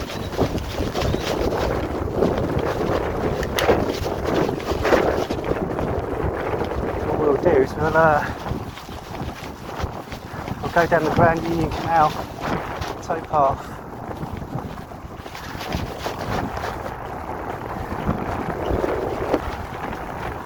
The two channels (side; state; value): both; identical; correlation 1.00